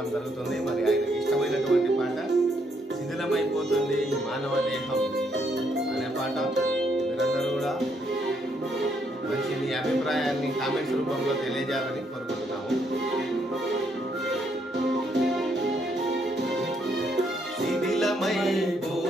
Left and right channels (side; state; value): both; normal; correlation 0.73